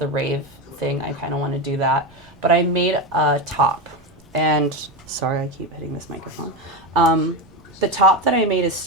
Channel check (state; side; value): noise; right; rumble, 29 dB below the sound